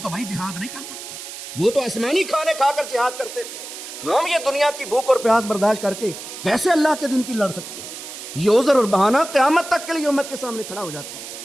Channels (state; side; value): noise; right; hiss, 11 dB below the sound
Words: بھائی جہاد نہیں کر سکتے۔ وہ تو آسمانی کھانے کھا کر جہاد کرتے تھے، ہم یہ دنیا کی بھوک اور پیاس برداشت کر کے کیسے اللہ کے دین کی لڑ سکتے ہیں؟ یہ عذر اور بہانہ قیامت تک کے لیے امت کے سامنے کھڑا ہو جاتا ہے۔